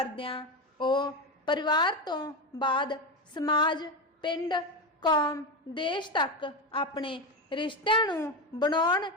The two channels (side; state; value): both; normal; correlation 0.16